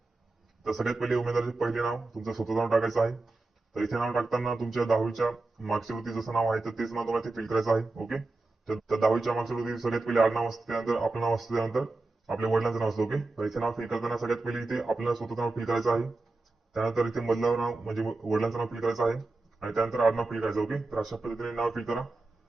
तर सगळ्यात पहिले उमेदवाराचे पहिले नाव तुमचं स्वतःचं नाव टाकायचं आहे. तर इथे नाव टाकताना तुमच्या 10वीच्या मागच्या वरती जसं नाव आहे तर तेच नाव तुम्हाला इथे फिल करायचं आहे. ओके. तर 10वीच्या मागच्या वरती सगळ्यात पहिले आडनाव असतं, त्यानंतर आपलं नाव असतं, त्यानंतर आपल्या वडिलांचं नाव असतं. ओके. तर इथे नाव फिल करताना सगळ्यात पहिले इथे आपल्याला स्वतःचं नाव फिल करायचं आहे. त्यानंतर इथे मधलं नाव म्हणजे वडिलांचं नाव फिल करायचं आहे आणि त्यानंतर आडनाव फिल करायचं. ओके. तर अशा पद्धतीने नाव फिल करा.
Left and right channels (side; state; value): left; quieter; 3.3 dB